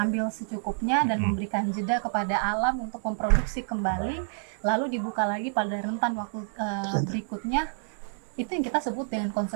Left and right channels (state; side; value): silent; left; digital silence